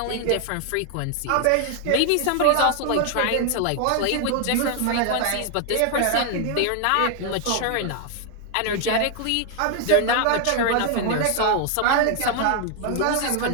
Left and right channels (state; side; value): different; both; correlation 0.00